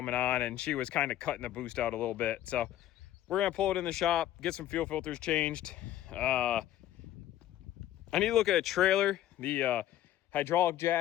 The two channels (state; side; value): quieter; right; 12.8 dB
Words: on and she was kind of cutting the boost out a little bit. So we're going to pull it in the shop, get some fuel filters changed. I need to look at a trailer. The hydraulic